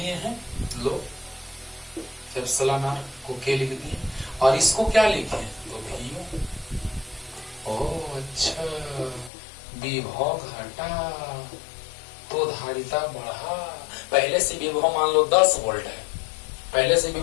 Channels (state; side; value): drops out; right; at 9.3 s